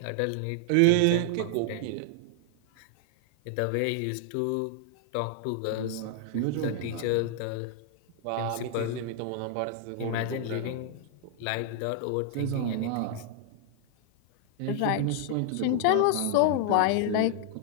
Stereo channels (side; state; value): both; different; correlation -0.01